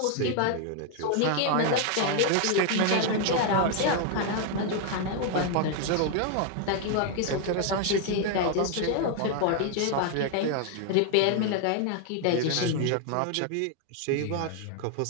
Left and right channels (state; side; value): different; both; correlation 0.00